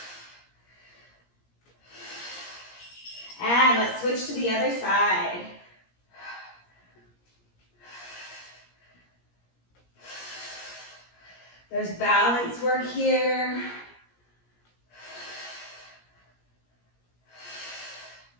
And let's switch to the other side. There's balance work here.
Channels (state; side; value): late; right; 17 ms